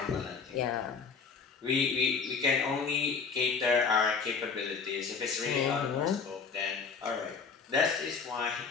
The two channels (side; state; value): right; quieter; 5.4 dB